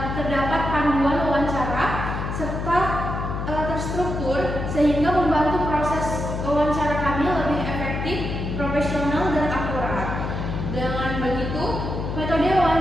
terdapat panduan wawancara serta terstruktur sehingga membantu proses wawancara kami lebih efektif, profesional dan akurat. Dengan begitu, metode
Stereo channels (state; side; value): noise; left; hum, 4 dB below the sound